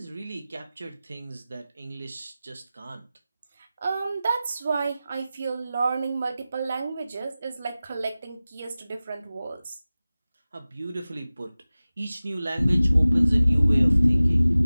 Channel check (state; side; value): inverted; both; correlation -0.97